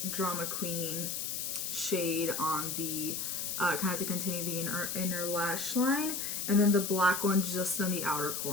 Drama Queen shade on the kind of to continue the inner lash line, and then the black one just on the outer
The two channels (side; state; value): left; noise; hiss, 3 dB below the sound